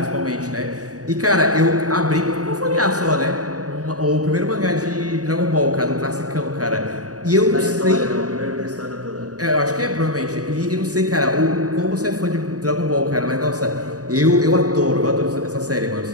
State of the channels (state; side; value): late; left; 0.67 ms